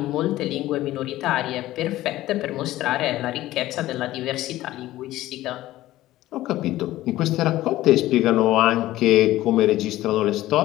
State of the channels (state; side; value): quieter; right; 15.6 dB